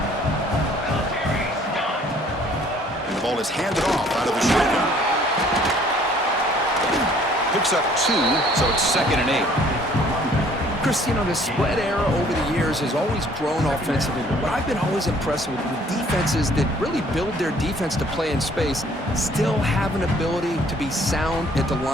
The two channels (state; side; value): normal; both; correlation 0.58